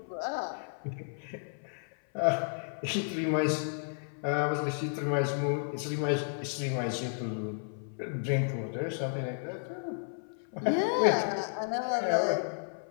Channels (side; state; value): right; silent; 56 dB below the other